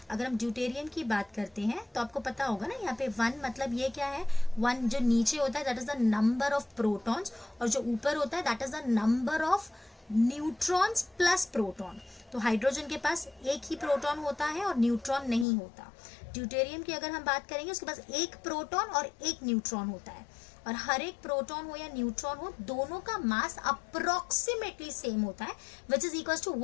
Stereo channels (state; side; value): drops out; right; at 15.5 s